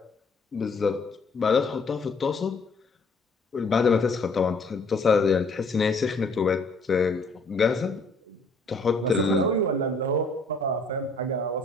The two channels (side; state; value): right; quieter; 3.2 dB